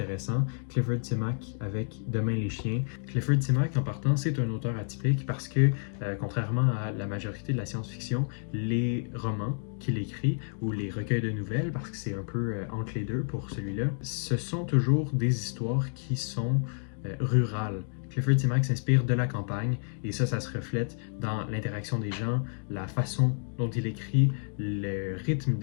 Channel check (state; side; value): silent; right; 58 dB below the other